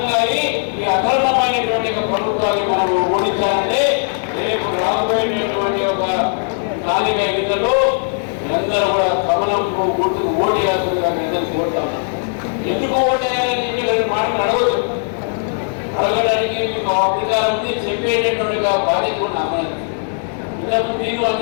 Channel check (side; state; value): right; silent; 57 dB below the other